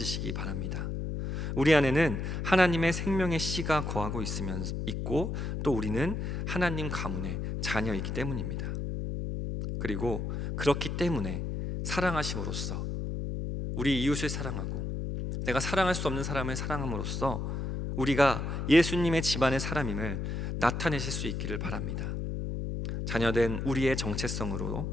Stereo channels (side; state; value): left; noise; hum, 3 dB below the sound